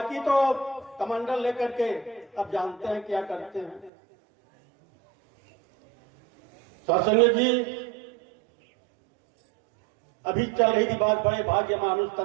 तो कमंडल लेकर के अब जानते हैं क्या करते हैं। सत्संग जी अभी चल रही थी बात, बड़े भाग्य मानुष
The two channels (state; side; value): drops out; left; at 3.9 s